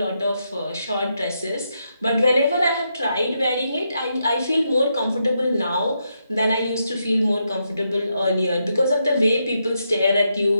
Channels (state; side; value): inverted; both; correlation -0.82